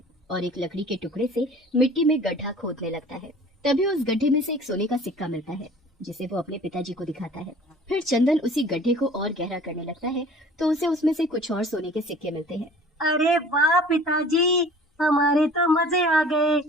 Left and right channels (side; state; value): both; normal; correlation 0.47